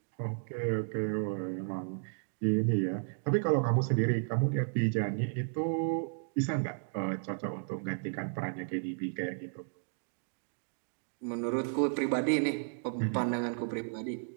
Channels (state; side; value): silent; left; digital silence